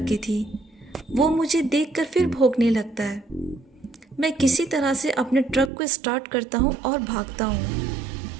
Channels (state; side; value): drops out; left; at 5.7 s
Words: की थी। वो मुझे देखकर फिर भौंकने लगता है। मैं किसी तरह से अपने ट्रक को स्टार्ट करता हूँ और भागता हूँ।